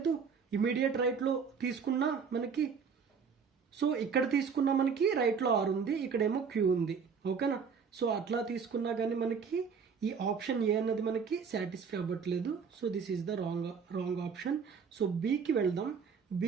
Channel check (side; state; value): left; quieter; 6.0 dB